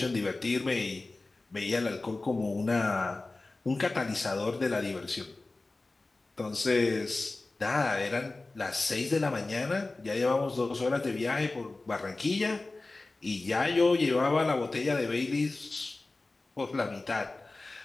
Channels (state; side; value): quieter; right; 3.2 dB